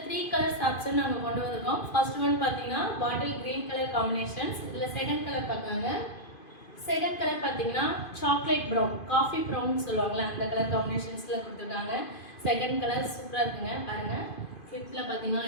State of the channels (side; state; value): right; late; 2.5 ms